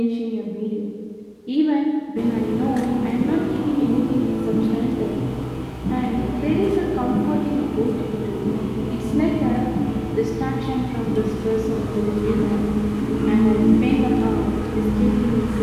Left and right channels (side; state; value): both; identical; correlation 1.00